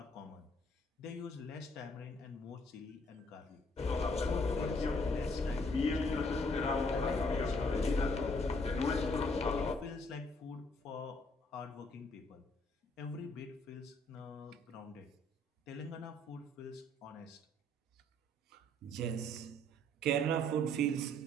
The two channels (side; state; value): both; normal; correlation 0.65